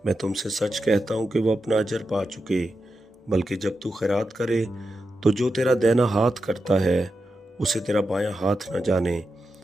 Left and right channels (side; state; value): both; normal; correlation 0.89